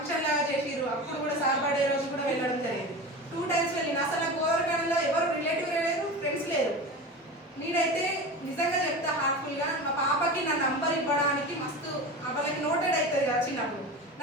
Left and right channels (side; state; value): both; normal; correlation 0.29